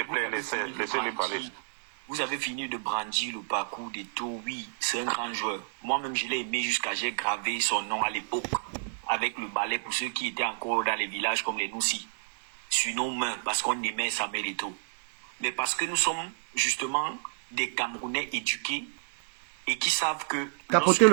plaît, laissez-le parler. Vous avez fini de brandir le parcours d'Eto'o. Oui, c'est un grand joueur. Moi-même, je l'ai aimé jusqu'à j'ai gravé son nom à l'époque avec le balai pour ceux qui étaient encore dans les villages comme les Noussi. Sur nos mains, parce qu'on aimait Samuel Eto'o. Mais parce que nous sommes justement des Camerounais éduqués et qui savent que... Tapotez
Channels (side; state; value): left; silent; digital silence